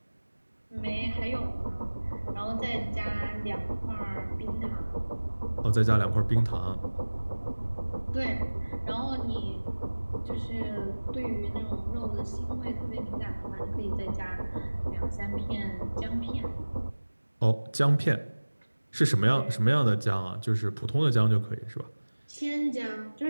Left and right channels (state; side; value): inverted; both; correlation -1.00